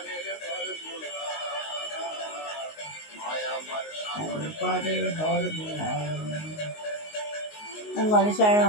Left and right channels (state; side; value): late; right; 19 ms